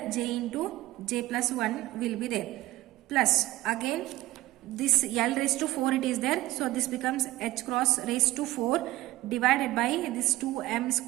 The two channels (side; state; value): left; quieter; 17.1 dB